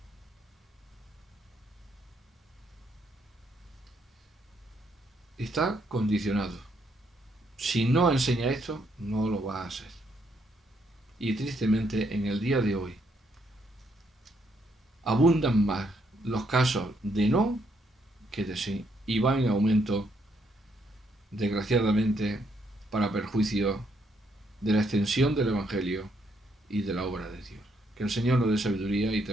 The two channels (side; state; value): both; normal; correlation 0.73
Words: Está condicionado. Si no enseña esto, no lo va a hacer. Y tristemente, en el día de hoy, abundan más los casos de no que de sí, y van en aumento, desgraciadamente, para perjuicio de la extensión del Evangelio y de la obra de Dios. Que el Señor nos dé sabiduría y